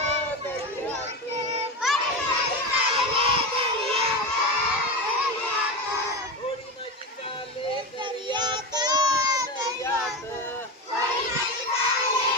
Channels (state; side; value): normal; both; correlation 0.20